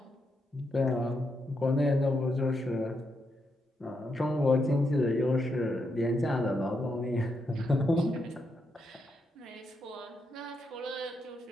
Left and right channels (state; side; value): normal; both; correlation 0.81